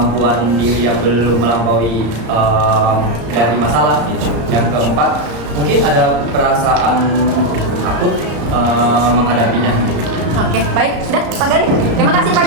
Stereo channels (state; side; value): late; left; 34 ms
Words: diri yang belum melampaui dari masalah gitu. Yang keempat, mungkin ada perasaan takut menghadapinya. Oke, baik. Sudah, Pak Galih. Terima kasih Pak